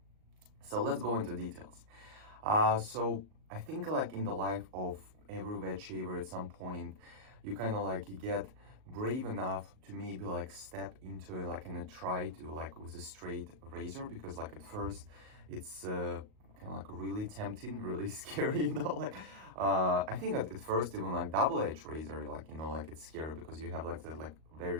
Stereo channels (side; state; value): left; late; 38 ms